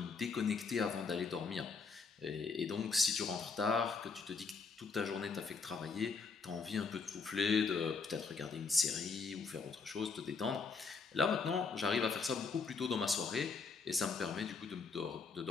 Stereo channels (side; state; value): right; quieter; 4.8 dB